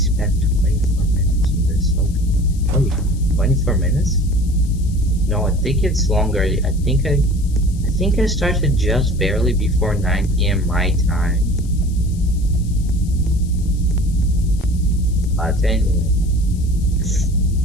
24 minutes on this. Okay. 24 minutes? No, I think it's longer. I think I started just barely before 9 PM my time. But anyway.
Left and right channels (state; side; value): noise; left; hiss, 22 dB below the sound